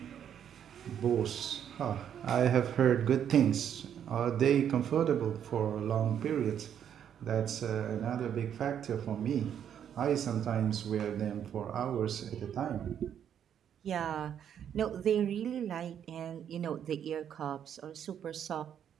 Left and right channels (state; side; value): quieter; left; 9.1 dB